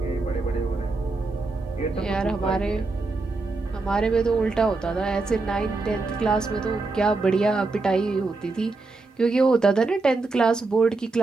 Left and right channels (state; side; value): quieter; left; 3.6 dB